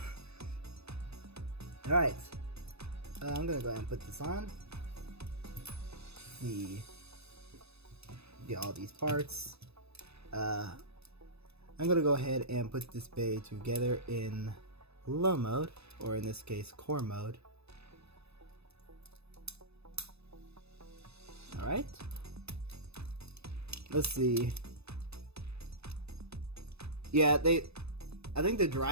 Alright, I'm gonna go ahead and put this on. Get all these parts. I'm gonna go ahead and put this Bey together in low mode, or in this case, core mode. Alright. Let's see. Yeah, I think the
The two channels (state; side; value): late; left; 0.79 ms